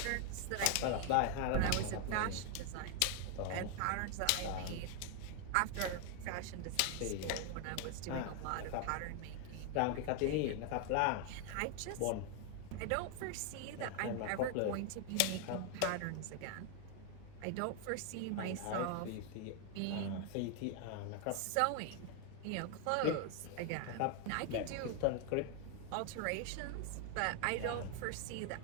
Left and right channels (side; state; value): both; different; correlation 0.00